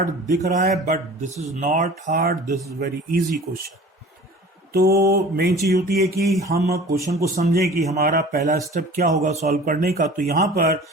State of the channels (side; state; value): both; normal; correlation 0.43